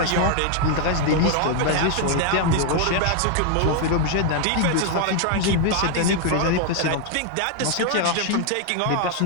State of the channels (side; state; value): both; different; correlation 0.00